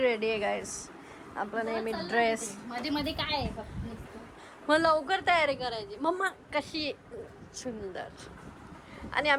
आहे गाईस. आपला नेहमी ड्रेस. मध्ये मध्ये काय आहे फक्त मग लवकर तयारी करायची. मम्मा कशी सुंदर. आणि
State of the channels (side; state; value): both; identical; correlation 1.00